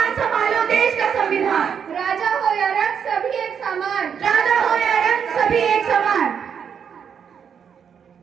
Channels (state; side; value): quieter; left; 7.4 dB